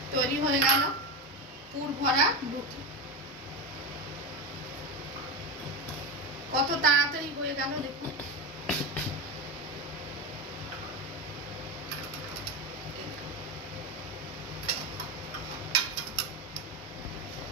তৈরি হয়ে গেল পুর ভরা রুটি। কত তাড়াতাড়ি হয়ে গেল দেখুন।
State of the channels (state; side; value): normal; both; correlation 0.17